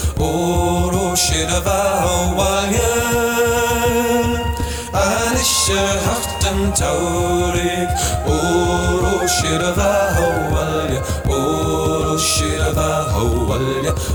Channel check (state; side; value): identical; both; correlation 1.00